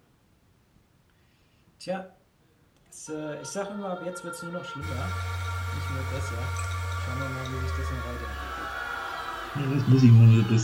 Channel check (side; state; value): both; identical; correlation 1.00